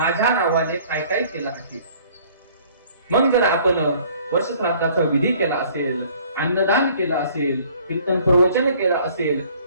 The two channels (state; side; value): inverted; both; correlation -0.55